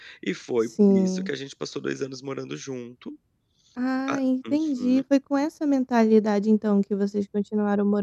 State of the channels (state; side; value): identical; both; correlation 1.00